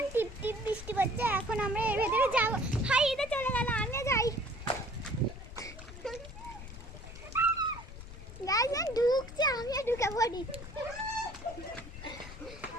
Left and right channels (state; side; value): noise; left; rumble, 13 dB below the sound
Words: টিপ টিপ বৃষ্টি পড়ছে, এখন আমরা এর ভেতরে যাব। হাই এটা চলে গেল, আমি যাই। গাইস ঢুকছে, আমিও ঢুকে পড়ি।